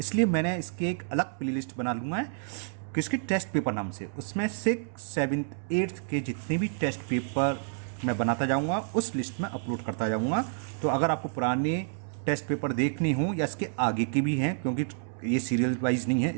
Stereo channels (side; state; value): left; silent; 58 dB below the other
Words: मैंने इसके एक अलग प्लेलिस्ट बना लूँगा किसकी टेस्ट पेपर नाम से। उसमें 6, 7, 8 के जितने भी टेस्ट पेपर मैं बनाता जाऊंगा उस लिस्ट में अपलोड करता जाऊंगा। तो अगर आपको पुराने टेस्ट पेपर देखने हो या इसके आगे के भी हैं, क्योंकि ये सीरियल वाइज नहीं